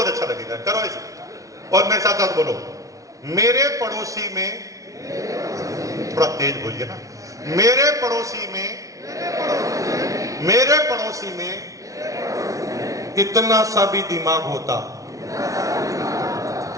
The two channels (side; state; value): left; late; 0.16 ms